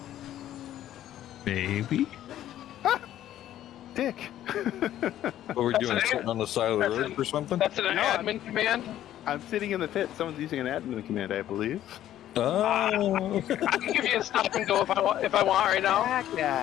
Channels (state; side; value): quieter; right; 12.3 dB